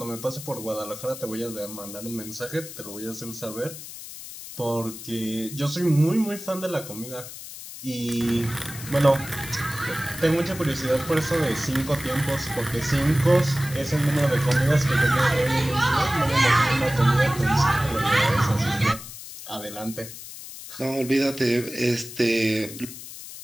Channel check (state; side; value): noise; left; hiss, 12 dB below the sound